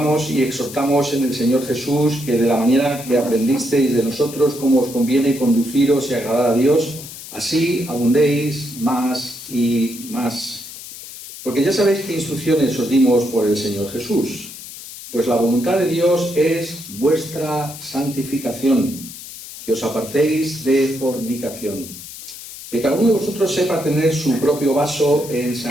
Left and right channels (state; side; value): noise; left; hiss, 13 dB below the sound